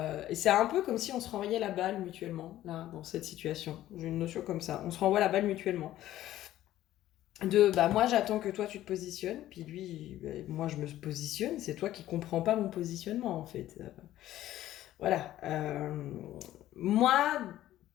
c'est un peu comme si on se renvoyait la balle mutuellement, là, dans cette situation. J'ai une notion comme ça. On se renvoie la balle mutuellement. Bah, moi, j'attends que toi, tu te positionnes, puis lui, moi, je me positionne. C'est toi qui comprends pas mon positionnement, en fait. Voilà. Moi,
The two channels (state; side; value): quieter; right; 13.8 dB